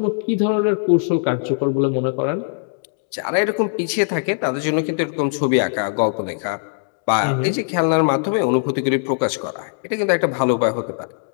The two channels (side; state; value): right; silent; digital silence